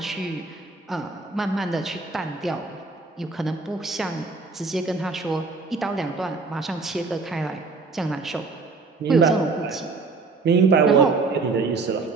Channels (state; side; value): quieter; left; 4.1 dB